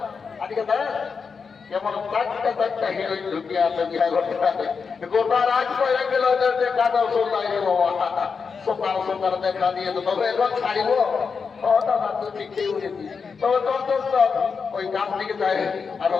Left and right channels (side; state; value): right; quieter; 5.5 dB